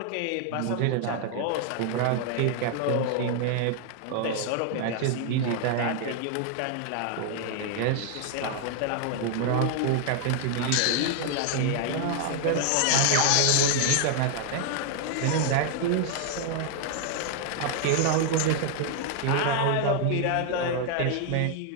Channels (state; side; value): different; both; correlation 0.00